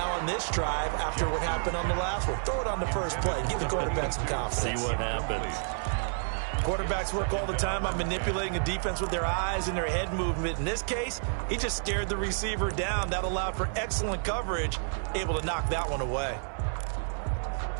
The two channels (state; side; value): silent; left; 58 dB below the other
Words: on this drive after what happened on the last one. Throw it on the first play. Give the quarterback some confidence. See what happens. Quarterbacks work all the time on manipulating a defense with their eyes and their head movement. In this case, he just stared the receiver down. That allowed for excellent coverage, able to knock that one away.